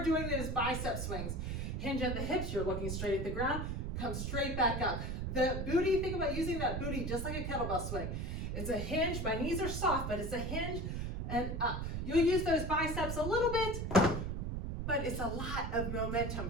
doing those bicep swings. Hinge at the hips, you're looking straight at the ground, come straight back up. The booty, think about using that booty just like a kettlebell swing. It's a hinge, my knees are soft, but it's a hinge and up. You'll use those biceps a little bit, but it's a lot of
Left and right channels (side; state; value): right; noise; rumble, 3 dB below the sound